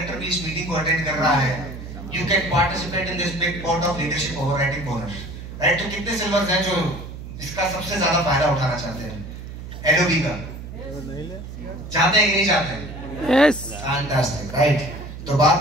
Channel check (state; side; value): noise; right; hum, 11 dB below the sound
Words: भी इस मीटिंग को अटेंड कर रहा है, you can participate in this big pot of leadership overriding bonus, right? तो कितने सिल्वर हैं जो इसका सबसे ज्यादा फायदा उठाना चाहते हैं? LOB का चाहते हैं कि नहीं चाहते हैं? Yes, fantastic, right? तो